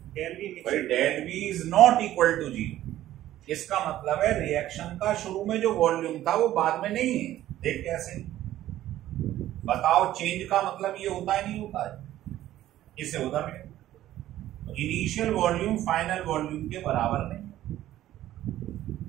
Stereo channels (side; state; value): left; quieter; 13.6 dB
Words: Del V is not equal to zero. इसका मतलब है रिएक्शन का शुरू में जो वॉल्यूम था वो बाद में नहीं है। देख कैसे, बताओ, चेंज का मतलब ये होता है नहीं होता है? इससे होता है इनिशियल वॉल्यूम फाइनल वॉल्यूम के बराबर नहीं।